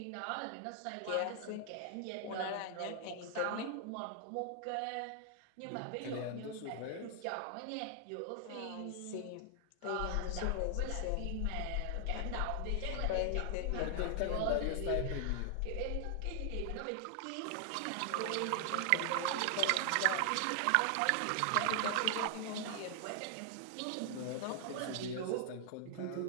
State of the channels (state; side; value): different; both; correlation 0.00